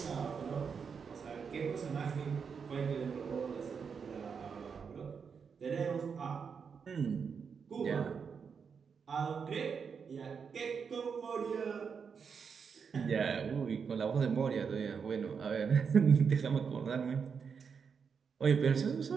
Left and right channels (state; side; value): quieter; left; 6.2 dB